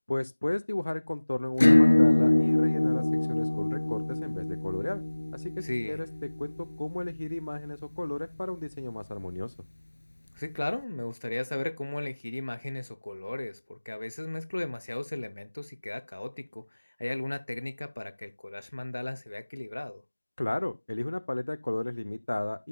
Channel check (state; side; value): inverted; both; correlation -1.00